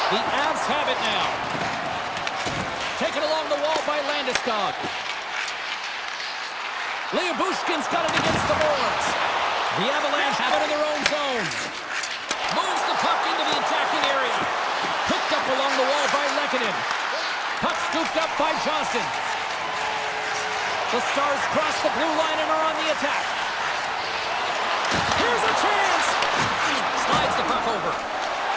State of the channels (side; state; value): both; identical; correlation 1.00